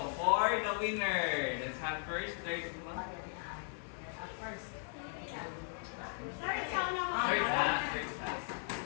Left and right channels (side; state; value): right; silent; 53 dB below the other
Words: for the winner, let's have first, third.